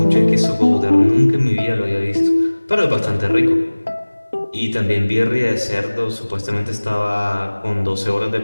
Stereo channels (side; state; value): both; inverted; correlation -1.00